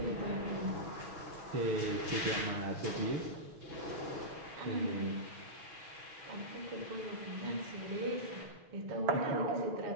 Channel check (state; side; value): late; left; 6.5 ms